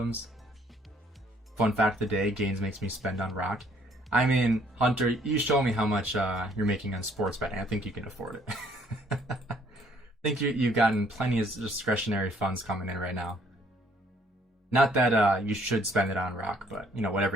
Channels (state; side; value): normal; both; correlation 0.63